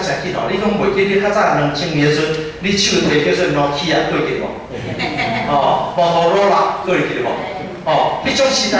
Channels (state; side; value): identical; both; correlation 1.00